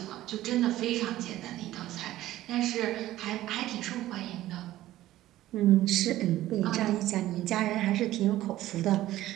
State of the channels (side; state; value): left; quieter; 14.9 dB